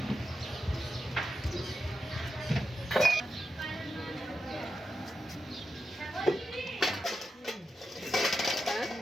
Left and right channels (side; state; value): both; normal; correlation 0.88